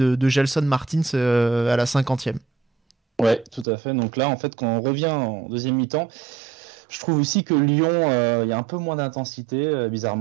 Gelson Martins à la 50e. Ouais, tout à fait. Donc là, en fait, quand on revient en deuxième mi-temps, je trouve aussi que Lyon, il y a un peu moins d'intensité,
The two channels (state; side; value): drops out; left; at 3.7 s